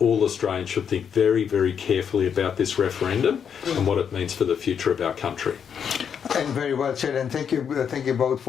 Australians should think very, very carefully about this referendum and what it means for the future of our country. And very well said, and thank you both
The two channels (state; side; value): quieter; right; 7.5 dB